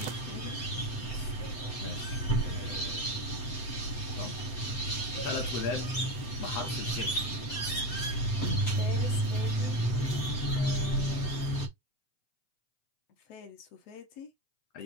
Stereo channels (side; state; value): right; late; 7.9 ms